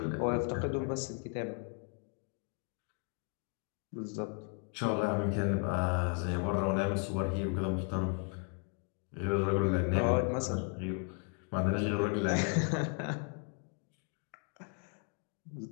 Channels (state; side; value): quieter; right; 38.9 dB